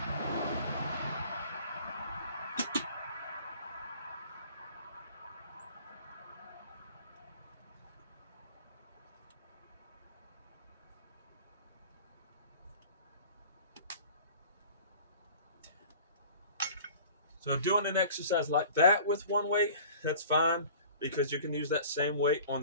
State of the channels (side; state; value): both; inverted; correlation -0.45